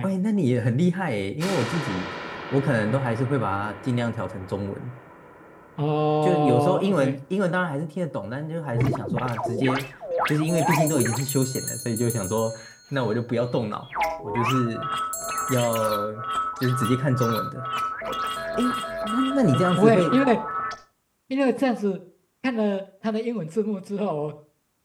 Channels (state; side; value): identical; both; correlation 1.00